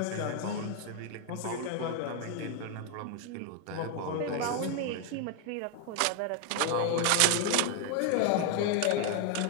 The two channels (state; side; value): different; both; correlation 0.01